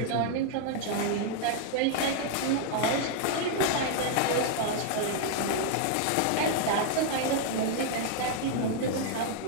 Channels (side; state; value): both; different; correlation 0.00